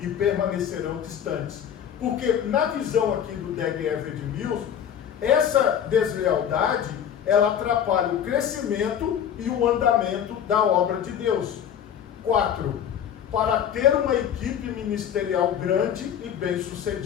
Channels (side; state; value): right; quieter; 9.0 dB